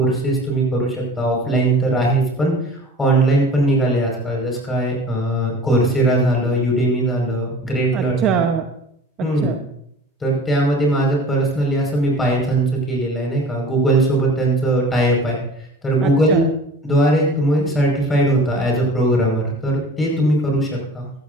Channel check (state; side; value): normal; both; correlation 0.43